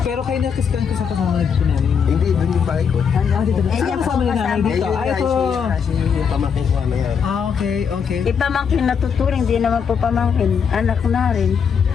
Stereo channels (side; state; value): right; quieter; 6.8 dB